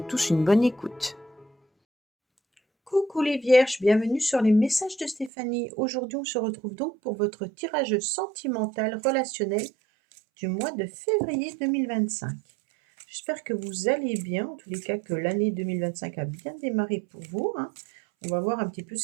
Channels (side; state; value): left; drops out; at 5.3 s